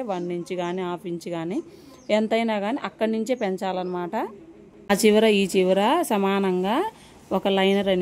1 ఇంచ్ కానీ హాఫ్ ఇంచ్ కానీ ఎంతైనా కానీ అక్కడి నుంచే పెంచాలన్నమాట. ఆ చివర ఈ చివర సమానంగా ఒక లైనర్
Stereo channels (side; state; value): both; identical; correlation 1.00